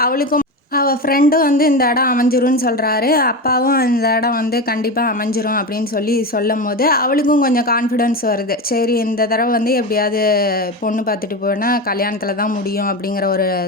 அவளுக்கும் அவள் ஃப்ரெண்டும் வந்து இந்த இடம் அமைஞ்சிரும்னு சொல்கிறாரு, அப்பாவும் இந்த இடம் வந்து கண்டிப்பாக அமைஞ்சிரும் அப்படின்னு சொல்லி சொல்லும் போது அவளுக்கும் கொஞ்சம் கான்ஃபிடென்ஸ் வருது. சரி, இந்த தடவை வந்து எப்படியாவது பொண்ணு பார்த்துட்டு போனால் கல்யாணத்தில் தான் முடியும் அப்படிங்கிற ஒரு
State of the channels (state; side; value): normal; both; correlation 0.21